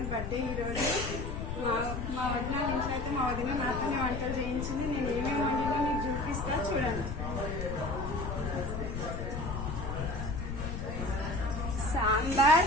బర్త్డే ఈరోజు. మా వదిన ఇంట్లో అయితే మా వదిన నాతోనే వంటలు చేయించింది. నేను ఏమేమి వండినా మీకు చూపిస్తా, చూడండి.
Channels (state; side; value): noise; left; rumble, 4 dB below the sound